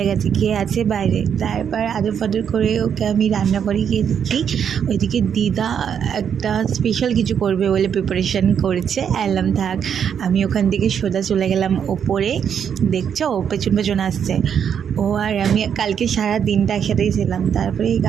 গেছে কে আছে বাইরে। তারপর আদর করে ওকে আমি রান্না করে গিয়ে দেখি ওইদিকে দিদা একটা স্পেশাল কিছু করবে বলে প্রিপারেশান করেছে। এলাম থাক, আমি ওখান থেকে সোজা চলে গেলাম ওপরে। দেখছো ও পেছন পেছন আসছে। ও আর আমি কালকে সারা দিনটা একসাথেই ছিলাম। তারপরে এই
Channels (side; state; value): left; quieter; 8.0 dB